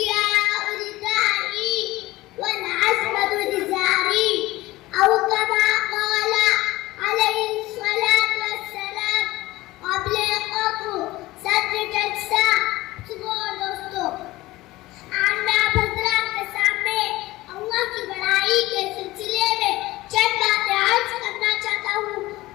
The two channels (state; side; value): quieter; right; 18.5 dB